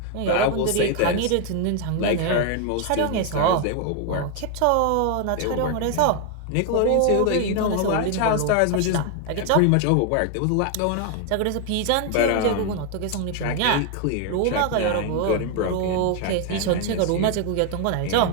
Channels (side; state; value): both; different; correlation 0.01